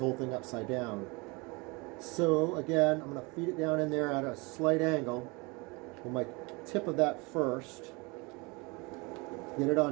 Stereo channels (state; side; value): quieter; left; 27.4 dB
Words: thing upside down. So again, I'm going to feed it down in there at a slight angle. With my tip of that first, get it